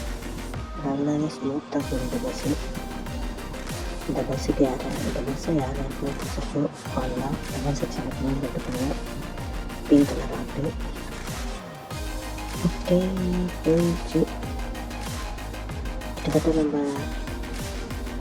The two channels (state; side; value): identical; both; correlation 1.00